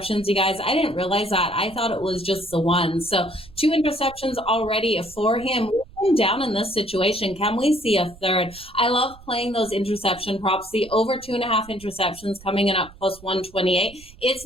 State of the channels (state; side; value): noise; right; rumble, 21 dB below the sound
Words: you guys. I didn't realize that. I thought it was just the one. So 2 interceptions already for him. Down in this situation, can we see a third? I love playing those interception props. The over 2.5 interceptions coming in at plus 128. It's